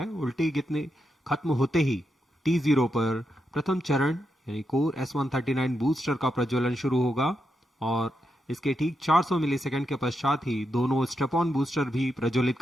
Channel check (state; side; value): normal; both; correlation 0.84